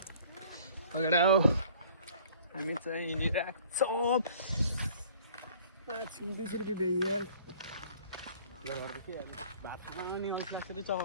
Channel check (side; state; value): both; inverted; correlation -0.52